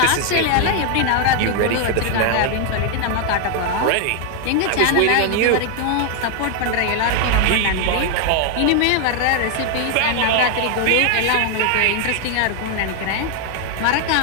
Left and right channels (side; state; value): both; different; correlation 0.00